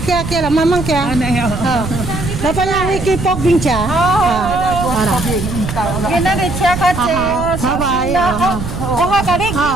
Kiara. Mamang Kiara. Ano yan? Napanya Wiki Pok Bincha. Para. Ginari siya kasi. Bye-bye. Oha ka rin.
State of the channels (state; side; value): noise; right; rumble, 6 dB below the sound